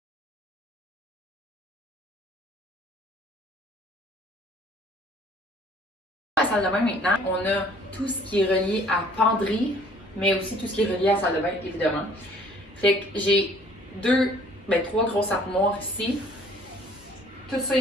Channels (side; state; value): both; normal; correlation 0.56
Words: À la salle de bain maintenant, on a tout ce qui est relié à penderie, mais aussi tout ce qui est relié à la salle de bain, évidemment. Fait que j'ai trois grosses armoires ici. Tout ça